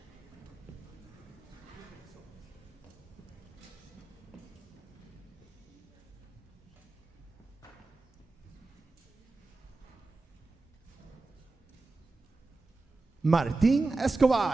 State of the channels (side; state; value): left; quieter; 3.5 dB